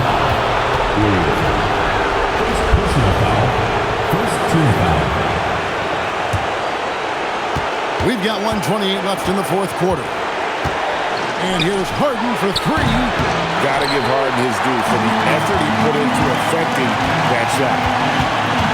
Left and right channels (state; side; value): identical; both; correlation 1.00